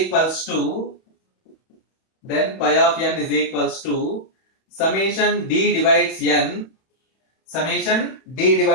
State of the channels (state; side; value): late; right; 31 ms